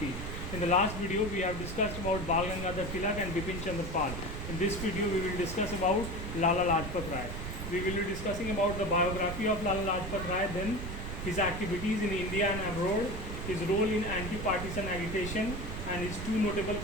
In the last video, we have discussed about Bal Gangadhar Tilak and Bipin Chandra Pal. In this video, we will discuss about Lala Lajpat Rai. We will be discussing about the biography of Lala Lajpat Rai, then his activities in India and abroad, his role in anti-partisan agitation, and his two notable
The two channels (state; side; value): noise; right; rumble, 6 dB below the sound